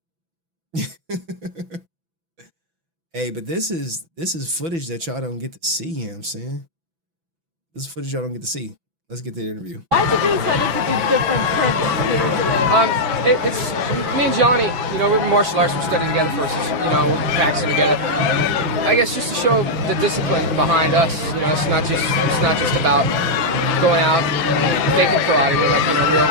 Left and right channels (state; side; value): late; left; 6.0 ms